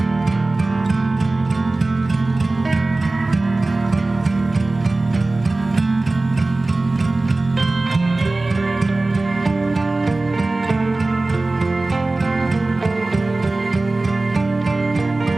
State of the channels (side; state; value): left; quieter; 3.1 dB